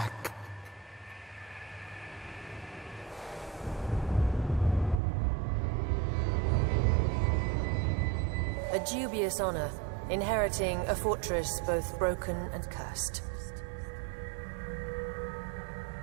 A dubious honor, inheriting a fortress both broken and cursed.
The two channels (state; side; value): drops out; left; at 5.0 s